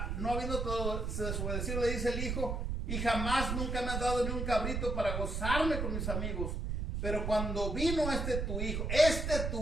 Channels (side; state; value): right; noise; rumble, 2 dB below the sound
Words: no habiendo todo desobedecido, le dice el hijo, y jamás nunca me has dado ni un cabrito para gozarme con mis amigos. Pero cuando vino este tu hijo,